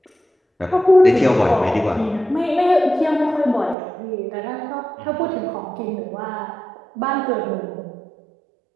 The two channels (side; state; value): left; drops out; at 3.8 s